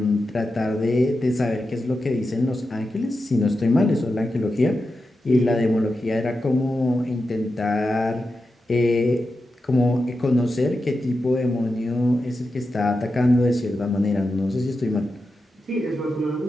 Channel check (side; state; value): both; normal; correlation 0.90